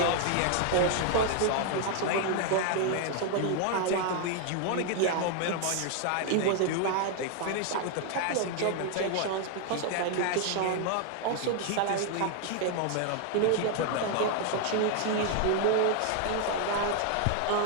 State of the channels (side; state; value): both; different; correlation 0.00